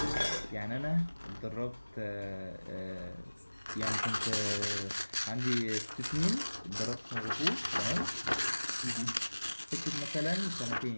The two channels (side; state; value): both; inverted; correlation -1.00